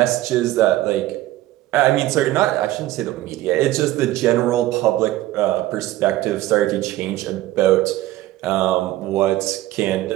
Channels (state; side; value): quieter; left; 15.8 dB